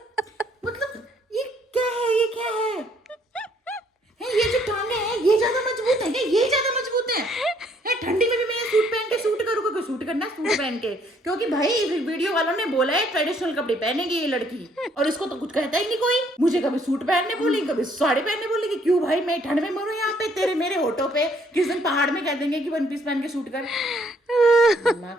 मतलब ये क्या है? ये जो टांगे हैं ये ज्यादा मजबूत है, ये ज्यादा मजबूत है। ठंडी में भी मैं सूट पहन के शूट करूँ, क्योंकि शूट करना सूट पहन के, क्योंकि भाई वीडियो वालों ने बोला है ट्रेडिशनल कपड़े पहनेगी ये लड़की, और इसको तो कुछ कहता ही नहीं कोई। मुझे कभी सूट पहनने बोलेगी, कभी साड़ी पहनने बोलेगी, क्यों भाई मैं ठंड में मरूं यहाँ पे तेरे मेरे होठों पे, किस दिन पहाड़ में कह देंगे कि वन पीस पहन के शूट कर। दिमाग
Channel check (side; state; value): both; normal; correlation 0.66